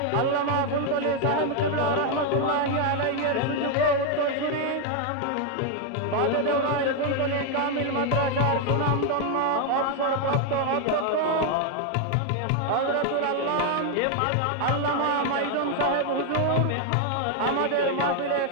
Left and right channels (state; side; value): different; both; correlation 0.01